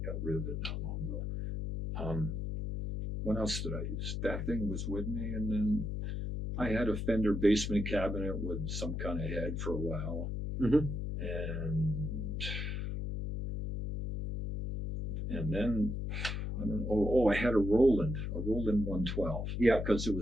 got rid of it not long ago. What else did I use? That thing was with me, and then I had a Fender basement cabinet with some kind of head for a while, and then I don't know. I had a Roland 112. Yeah, because it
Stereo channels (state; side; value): noise; left; hum, 3 dB below the sound